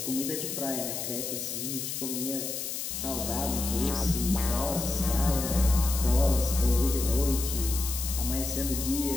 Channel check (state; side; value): noise; left; hiss, 4 dB below the sound